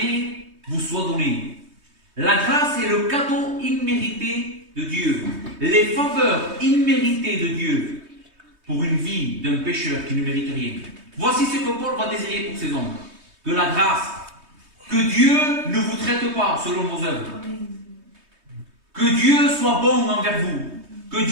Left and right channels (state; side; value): late; left; 3.2 ms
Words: vous soient données. La grâce est le cadeau immérité de Dieu, les faveurs imméritées de Dieu pour une vie d'un pécheur qui ne mérite rien. Voici ce que Paul va désirer pour ces hommes. Que la grâce, que Dieu ne vous traite pas selon vos œuvres, que Dieu soit bon envers vous, que